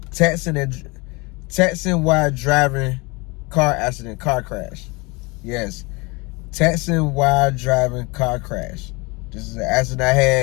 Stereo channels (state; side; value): quieter; right; 26.8 dB